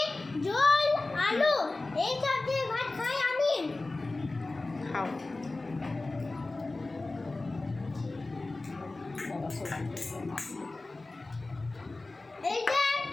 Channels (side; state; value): right; quieter; 3.2 dB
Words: ঝোল, আলু এই সব দিয়ে ভাত খাই আমি। খাও। এই যে